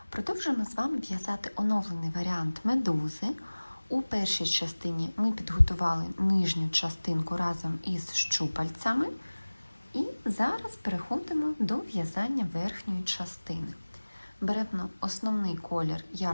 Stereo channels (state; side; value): inverted; both; correlation -1.00